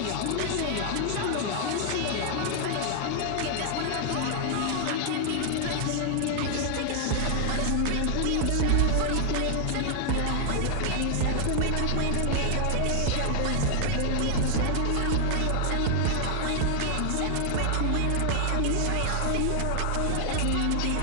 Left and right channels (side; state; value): both; different; correlation 0.00